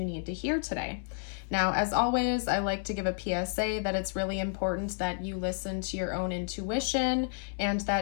need to hear today. Now, as always, I like to give a PSA that it's really important that you listen to your own intuition and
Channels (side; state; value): right; silent; 57 dB below the other